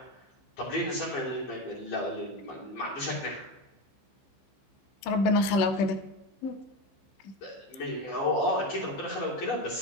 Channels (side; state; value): right; late; 16 ms